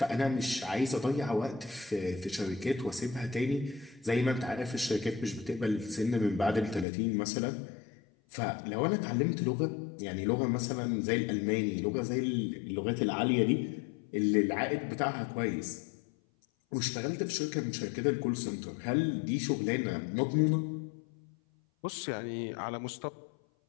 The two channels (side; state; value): right; drops out; at 6.9 s